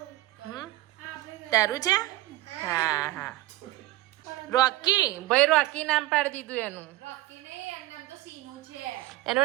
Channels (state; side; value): quieter; left; 17.5 dB